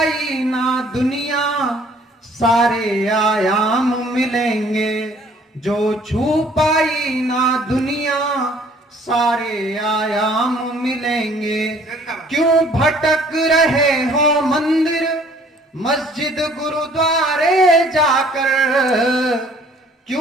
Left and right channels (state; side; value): normal; both; correlation 0.57